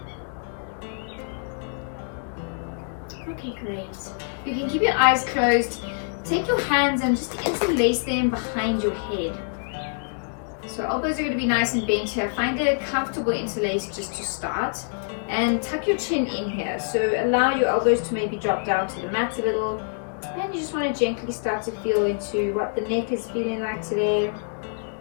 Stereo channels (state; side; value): silent; right; digital silence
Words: Okay, great. You can keep your eyes closed. Take your hands and just interlace them behind your head. So elbows are going to be nice and bent here. Find a comfortable interlace just to start. And tuck your chin in here. So allow your elbows to maybe drop down to the mat a little. And you just want to gently start to feel into what the neck is feeling like today.